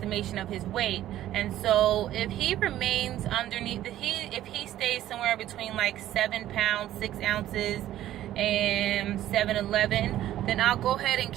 of his weight. And so if he remains underneath, if he stays somewhere between like 7 pounds 6 ounces and 7'11", then I'll go ahead and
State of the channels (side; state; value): left; quieter; 13.1 dB